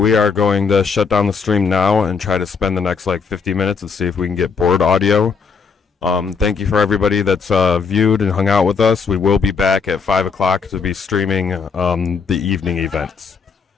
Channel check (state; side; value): quieter; right; 5.6 dB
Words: are going to shut down the stream now and try to spend the next 50 minutes and see if we can get board audio. Thank you for everybody that's viewed and hung out with us. We will be back at 5 o'clock to be streaming the evening events.